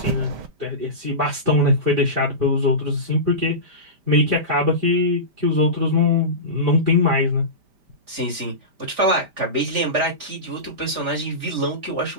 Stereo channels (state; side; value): late; left; 5.1 ms